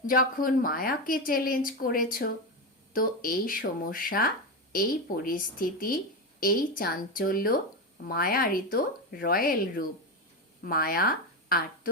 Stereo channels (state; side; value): normal; both; correlation 0.14